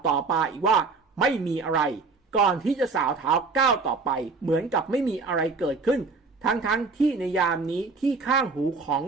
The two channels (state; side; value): quieter; left; 4.2 dB